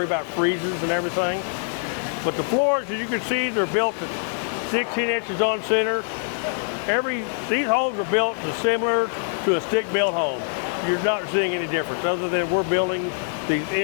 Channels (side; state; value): right; silent; 63 dB below the other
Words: about freezes and everything. But the floors, as you can see, they're built 16 inches on center. These homes are built similar to a stick-built home. You're not seeing any difference other than we're building the